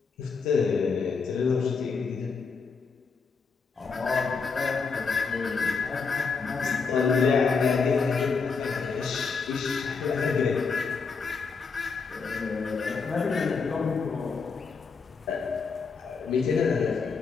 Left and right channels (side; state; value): right; quieter; 5.1 dB